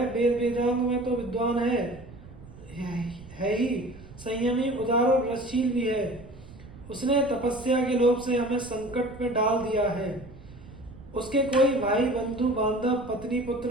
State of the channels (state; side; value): noise; right; rumble, 18 dB below the sound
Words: वेद वेदांग में तो विद्वान है ही, संयमी, उदार और रसशील भी है। उसने तपस्या के लोभ से हमें संकट में डाल दिया है। उसके कोई भाई बंधु बांधव पत्नी पुत्र